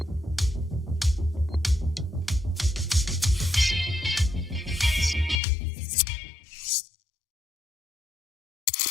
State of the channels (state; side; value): drops out; right; at 5.4 s